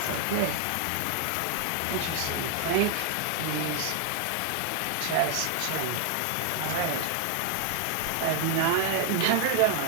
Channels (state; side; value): different; both; correlation 0.00